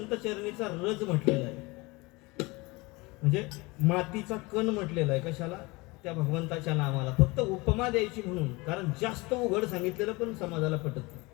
चरणीचा रज म्हटलेला आहे, म्हणजे मातीचा कण म्हटलेला आहे. कशाला? त्या भगवंताच्या नामाला. फक्त उपमा द्यायची म्हणून, कारण जास्त उघड सांगितलेलं पण समाजाला पटत नाही.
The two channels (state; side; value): quieter; right; 24.3 dB